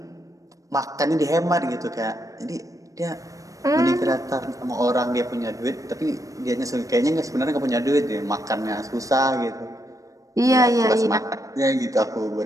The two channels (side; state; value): left; late; 0.16 ms